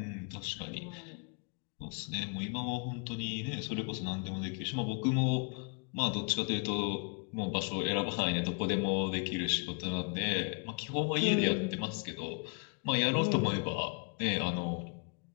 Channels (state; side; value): quieter; right; 36.3 dB